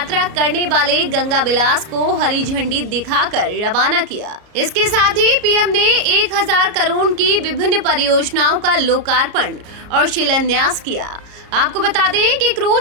करने वाले गंगा विलास को हरी झंडी दिखाकर रवाना किया। इसके साथ ही पीएम ने 1000 करोड़ की विभिन्न परियोजनाओं का लोकार्पण और शिलान्यास किया। आपको बता दें कि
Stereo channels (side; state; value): left; late; 34 ms